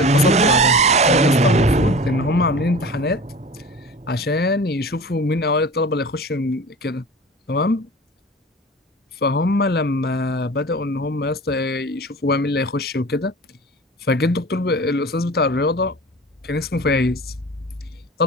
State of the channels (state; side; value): normal; both; correlation 0.37